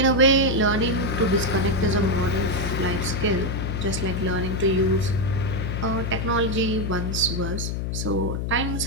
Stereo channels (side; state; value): left; noise; hum, 2 dB below the sound